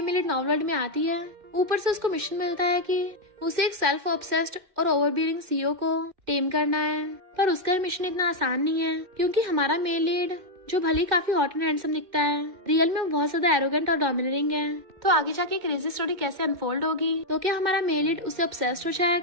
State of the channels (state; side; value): late; left; 2.4 ms